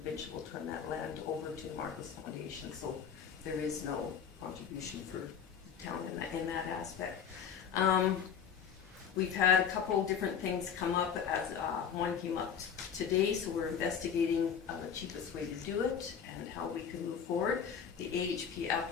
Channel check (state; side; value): quieter; right; 7.5 dB